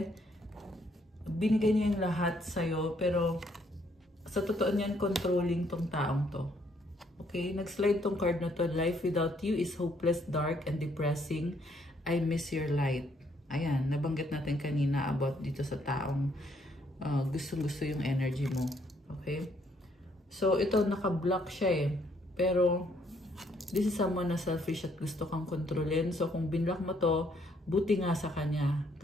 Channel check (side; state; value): both; normal; correlation 0.69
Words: binigay niya yung lahat sa'yo. Pero sa totoo niyan, controlling tong taong to. Okay? Nag-slide tong card na to. Life without you is hopeless, dark, and depressing. I miss your light. Ayan. Nabanggit natin kanina about dito sa taong gustong-gusto yung energy mo. Okay? So, ito naka-block siya eh. Pero, this is someone na selfish at gusto kang kontrolin. So, kung binlock mo to, buti nga sa kanya.